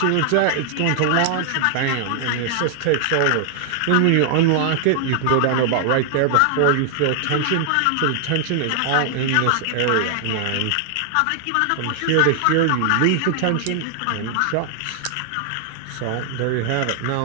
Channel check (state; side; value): different; both; correlation 0.00